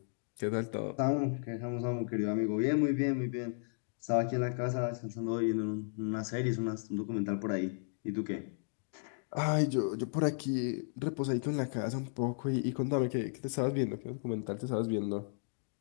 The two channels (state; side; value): silent; right; digital silence